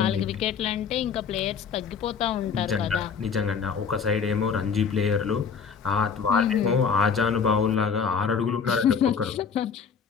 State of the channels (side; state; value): right; quieter; 6.3 dB